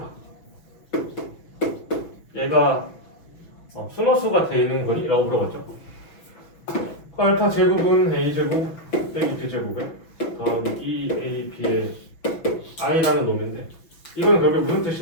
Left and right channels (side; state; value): right; late; 6.1 ms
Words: 얘가 순허수가 되는 거니? 라고 물어봤죠. 그 알파 제곱은 A 제곱 빼기 B 제곱에 더하기 2AB의 I라는 놈인데 이건 결국 무슨